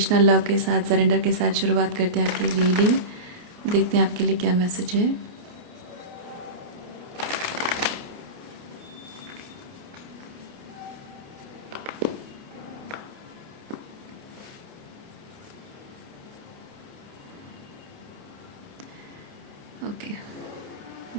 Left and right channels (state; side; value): late; left; 29 ms